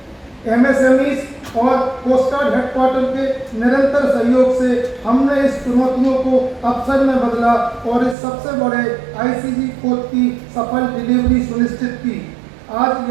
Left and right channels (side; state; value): left; drops out; at 8.2 s